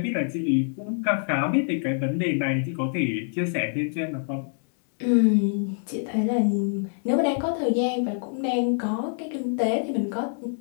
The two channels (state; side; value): silent; right; digital silence